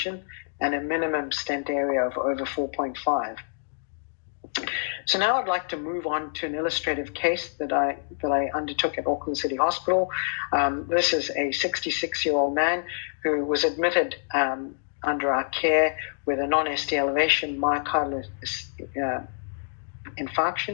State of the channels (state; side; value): silent; right; digital silence